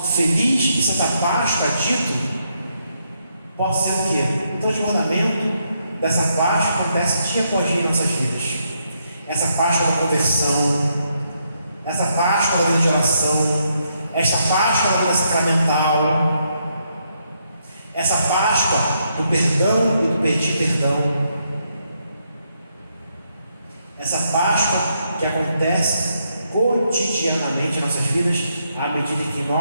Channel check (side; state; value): both; inverted; correlation -0.77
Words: feliz e Santa Páscoa dito possa ser o quê? O transbordamento dessa Páscoa acontece dia após dia em nossas vidas. Essa Páscoa da conversão, essa Páscoa da vida de oração, esta Páscoa da vida sacramental, essa Páscoa do perdão e do pedir perdão, essa Páscoa que acontece cotidianamente em nossas vidas, à medida que